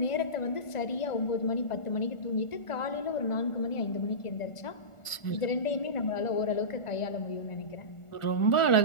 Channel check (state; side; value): late; right; 1.4 ms